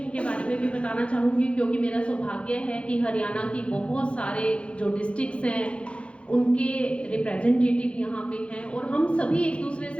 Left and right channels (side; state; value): right; late; 0.060 ms